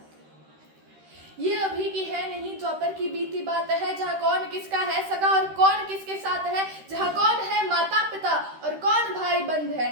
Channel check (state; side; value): late; left; 13 ms